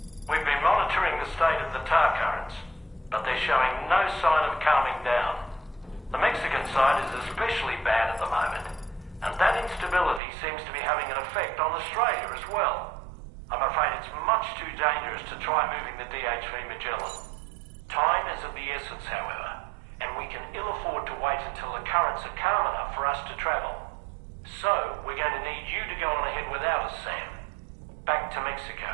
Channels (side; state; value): left; drops out; at 10.2 s